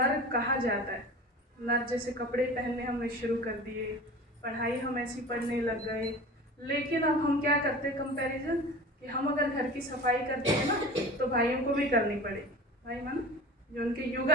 कहा जाता है। नर जैसे कपड़े पहनने हमने शुरू कर दिए, पढ़ाई हम ऐसी पढ़ने लग गए, लेकिन अब हम क्या करते हैं कंपैरिजन कि हम अगर घर की सफाई करते हैं ना तो भाइयों को भी करनी पड़ेगी। भाई माना जो उनके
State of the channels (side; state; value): both; normal; correlation 0.37